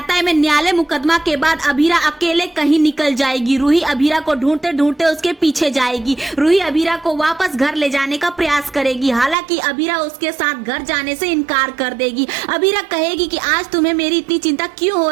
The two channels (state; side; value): drops out; left; at 9.3 s